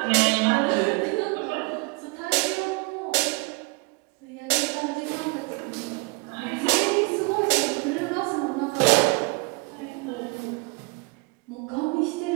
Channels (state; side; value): quieter; left; 29.1 dB